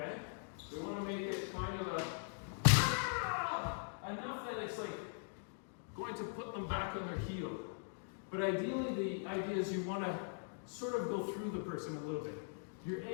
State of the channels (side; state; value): right; silent; digital silence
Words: We want to make it kind of enough that it's like going to put them back on their heel. But ideally, the idea is you want to sort of go through the person a little bit. You're